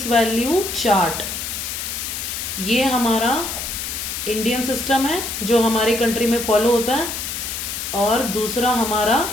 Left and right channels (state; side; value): noise; left; hiss, 5 dB below the sound